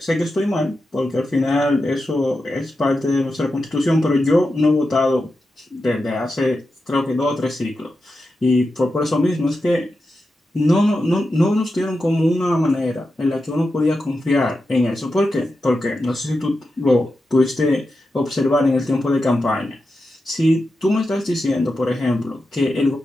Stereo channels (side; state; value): both; normal; correlation 0.90